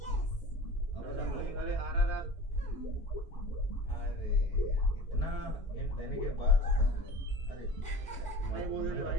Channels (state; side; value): normal; both; correlation 0.38